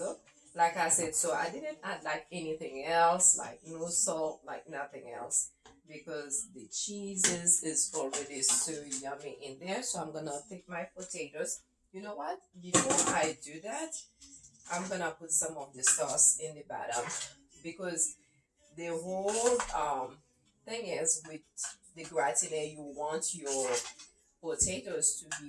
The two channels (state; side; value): identical; both; correlation 1.00